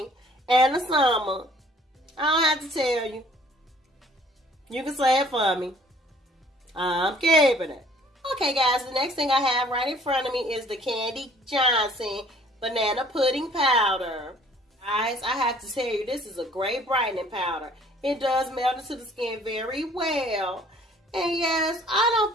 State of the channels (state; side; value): normal; both; correlation 0.56